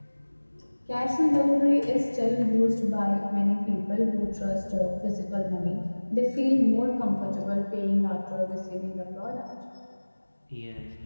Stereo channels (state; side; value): inverted; both; correlation -1.00